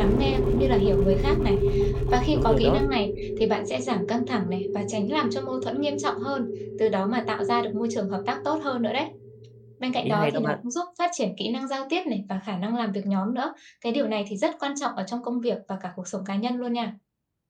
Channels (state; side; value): identical; both; correlation 1.00